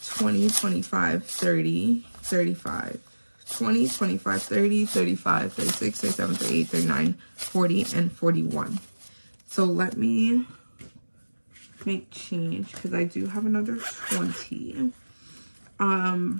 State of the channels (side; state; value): both; inverted; correlation -1.00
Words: 20, 25, 30, 35, 20, 25, 30, 35, 36, 37, 38, 39, 40, and 41. So let me make change because I do have another 20.